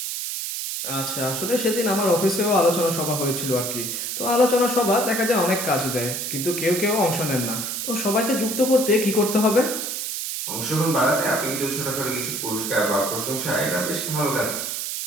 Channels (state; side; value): noise; right; hiss, 3 dB below the sound